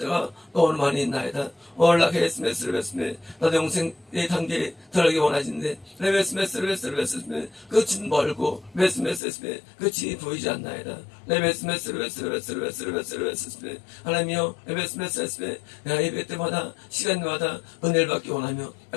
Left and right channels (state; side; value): drops out; right; at 9.2 s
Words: 너무 많이 있나이다. 올라케스메스르베스메 나도 영생의 단계에 들어가기 원하시는데 레베스메스르베스메 끝은 멀고 메스메스메 끝이 보이지 않나이다. 레베스메스르베스메 하나님이여 레베스메스메 내가 예배 때마다 시간마다 은혜를 받기 원하며